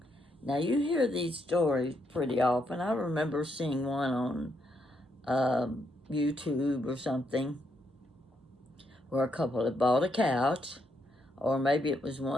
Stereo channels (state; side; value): normal; both; correlation 0.78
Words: Now, you hear these stories pretty often. I remember seeing one on YouTube or something where a couple had bought a couch, or maybe it was